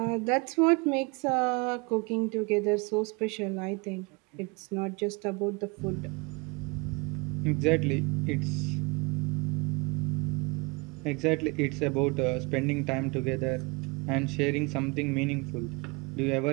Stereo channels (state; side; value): quieter; left; 28.2 dB